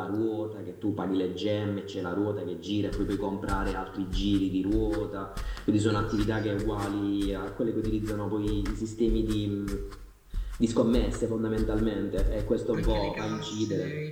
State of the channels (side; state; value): both; identical; correlation 1.00